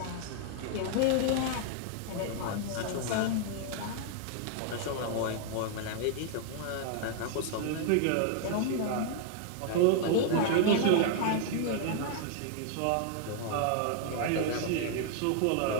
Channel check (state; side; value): different; both; correlation 0.00